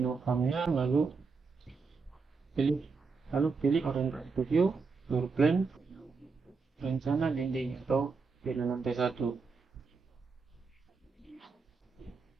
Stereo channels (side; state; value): left; quieter; 4.7 dB